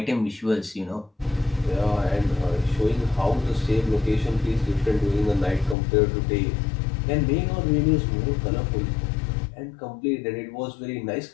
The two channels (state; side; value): drops out; right; at 5.8 s